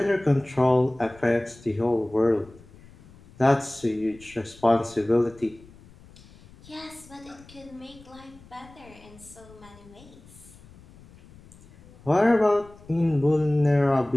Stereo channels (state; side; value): noise; left; rumble, 23 dB below the sound